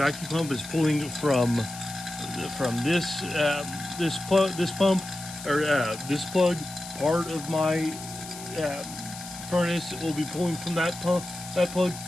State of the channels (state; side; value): noise; left; hiss, 13 dB below the sound